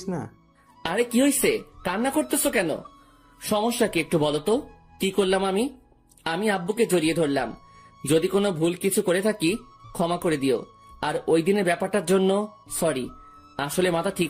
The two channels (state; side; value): identical; both; correlation 1.00